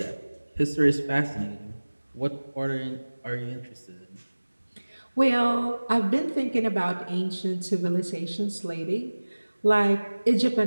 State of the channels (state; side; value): inverted; both; correlation -1.00